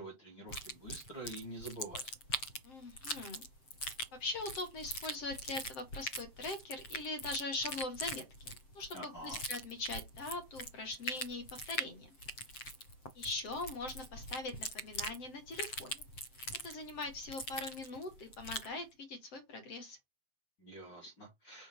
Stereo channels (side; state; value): right; late; 7.7 ms